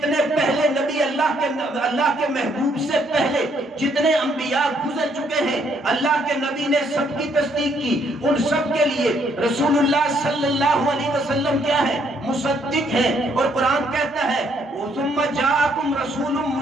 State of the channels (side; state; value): both; normal; correlation 0.69